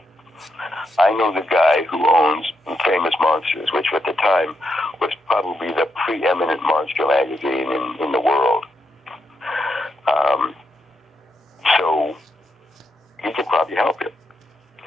I know the guy who owns Famous Monsters, which at the time was probably the preeminent monster magazine in the world. So he could probably help you.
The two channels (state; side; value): normal; both; correlation 0.82